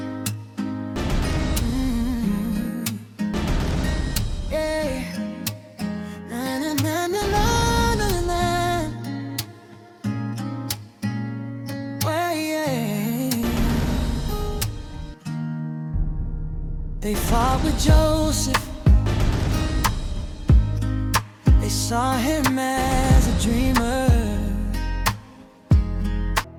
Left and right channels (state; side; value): identical; both; correlation 1.00